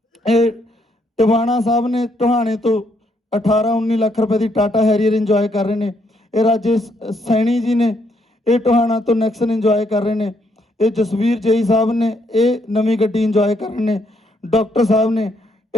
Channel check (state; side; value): normal; both; correlation 0.73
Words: ਇਹ ਟਿਵਾਣਾ ਸਾਹਿਬ ਨੇ, ਟੋਹਾਣੇ ਤੋਂ 18-19 ਲੱਖ ਰੁਪਏ ਦੀ ਟਾਟਾ ਹੈਰੀਅਰ ਇੰਜੋਏ ਕਰ ਰਹੇ ਨੇ। ਇਹ ਰਾਜੇਸ਼ ਸੈਣੀ ਜੀ ਨੇ, ਇਹ ਟੋਹਾਣਾ ਤੋਂ ਨੈਕਸਨ ਇੰਜੋਏ ਕਰ ਰਹੇ ਨੇ। ਇਹ ਜਸਵੀਰ ਜਈ ਸਾਹਿਬ ਨੇ, ਇਹ ਨਵੀਂ ਗੱਡੀ ਇੰਜੋਏ ਕਰ ਰਹੇ ਨੇ। ਡਾਕਟਰ ਸਾਹਿਬ ਨੇ,